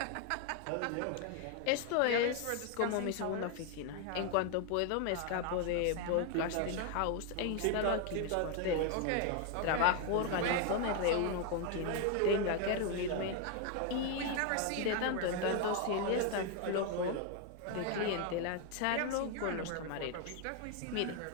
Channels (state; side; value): different; both; correlation 0.01